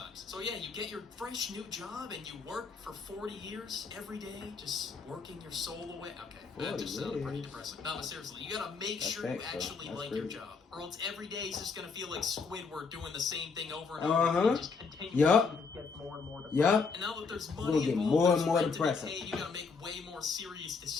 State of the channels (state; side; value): quieter; right; 4.9 dB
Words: So yeah, you get your fresh new job and you work for 40 years every day, just working your soul away. Okay, that just sounds pretty depressing. No, but seriously, you gotta make sure you actually like your job, or else every day is just gonna feel like Squidward doing the same thing over and over. And just continue to get more and more depressing. And now that there's money involved, more depressing. You gotta make way more serious